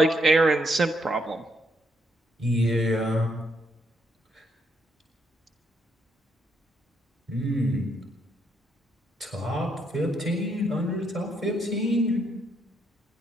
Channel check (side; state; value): both; normal; correlation 0.75